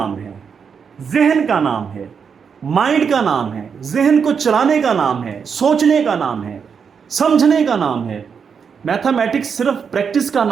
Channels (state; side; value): quieter; left; 6.5 dB